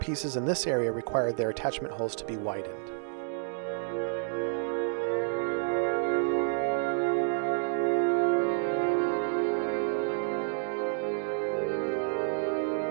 in this area required their attachment holes to be widened.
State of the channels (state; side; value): silent; left; digital silence